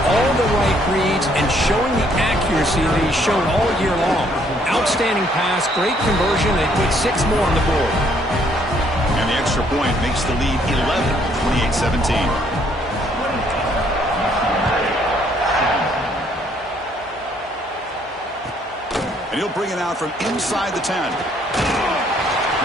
all the right reads and showing the accuracy that he's shown all year long. Outstanding pass, great conversion. They put 6 more on the board. And the extra point makes the lead 11, 28-17. And he'll bring it out from inside the 10.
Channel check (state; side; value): normal; both; correlation 0.66